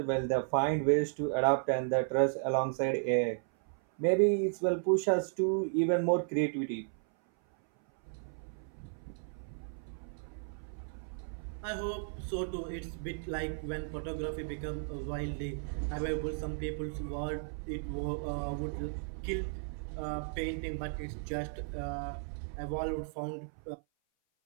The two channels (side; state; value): left; silent; 55 dB below the other